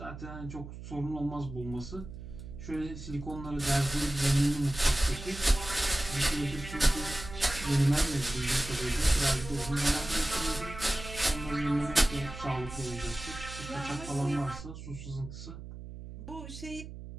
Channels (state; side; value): noise; right; hum, 12 dB below the sound